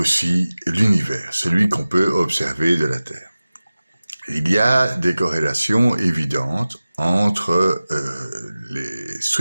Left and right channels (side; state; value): both; inverted; correlation -0.97